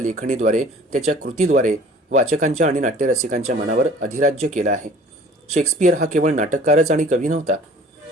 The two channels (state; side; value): normal; both; correlation 0.49